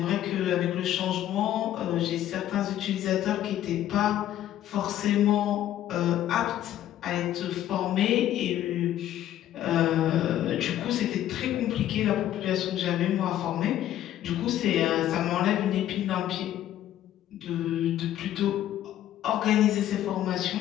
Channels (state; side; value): quieter; right; 12.2 dB